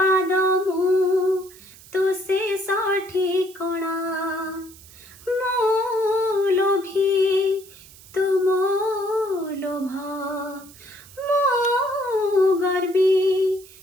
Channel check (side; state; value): right; noise; hiss, 21 dB below the sound